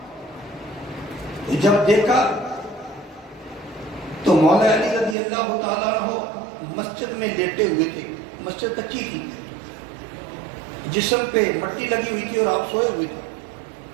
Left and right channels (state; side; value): drops out; left; at 5.2 s